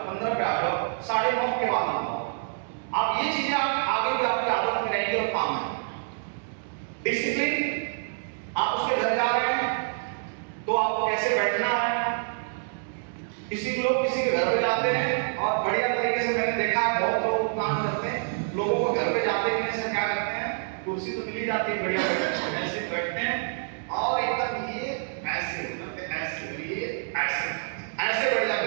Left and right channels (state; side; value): silent; left; digital silence